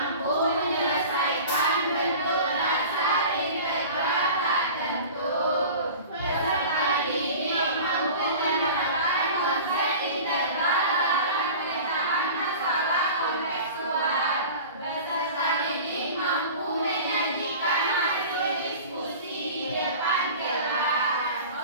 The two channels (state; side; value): inverted; both; correlation -0.38